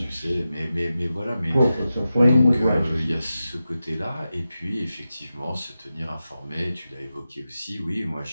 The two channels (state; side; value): inverted; both; correlation -0.92